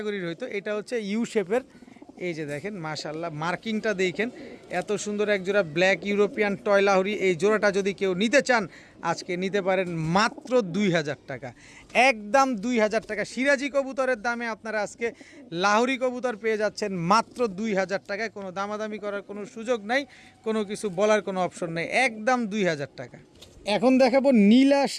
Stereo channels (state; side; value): identical; both; correlation 1.00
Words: হইতো, এটা হচ্ছে ইউ শেপের। এই যে দেখেন মাশাআল্লাহ মার্কিংটা দেখেন, এত সুন্দর এক জোড়া ব্ল্যাক ইউরোপিয়ান টয় লাহোরি। এই জোড়াটা যদি কেউ নিতে চান আজকে নিতে পারেন মাত্র 2000 টাকা, একদম 2000 টাকা। সিরাজি কবুতরের দামে আপনারা আজকে লাহোরি কবুতর পেয়ে যাচ্ছেন মাত্র 2000 টাকায়। কোনো দামাদামি করার কোনো সুযোগ নাই, কোনো কিছু বলার কোনো অপশন নেই, একদম 2000 টাকা। এখন দেখাবো নীলা